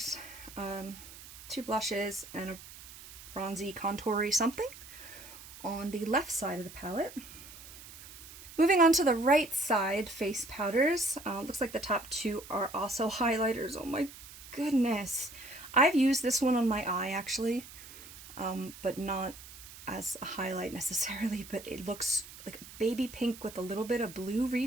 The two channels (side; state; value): right; noise; hiss, 16 dB below the sound